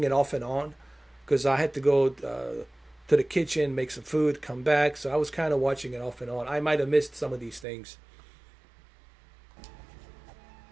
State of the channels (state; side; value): drops out; left; at 7.7 s